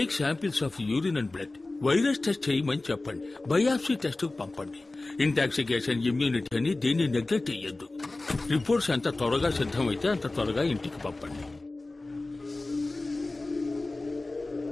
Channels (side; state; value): right; quieter; 3.0 dB